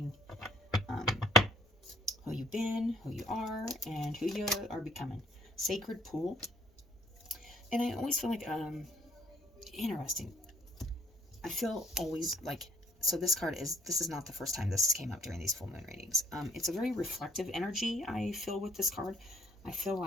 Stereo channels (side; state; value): both; normal; correlation 0.63